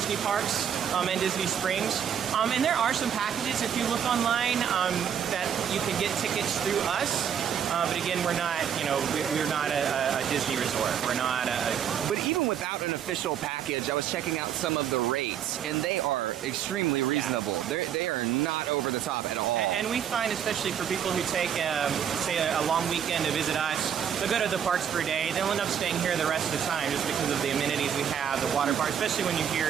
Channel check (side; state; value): left; quieter; 8.6 dB